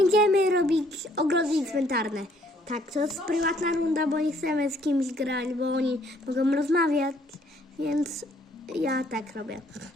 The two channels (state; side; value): normal; both; correlation 0.64